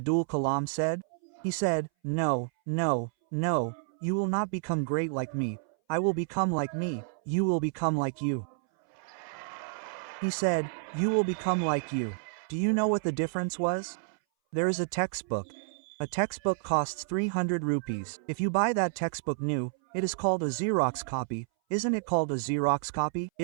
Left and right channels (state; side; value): silent; left; 58 dB below the other